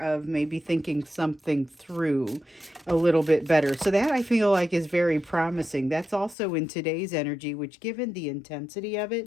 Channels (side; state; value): right; drops out; at 6.4 s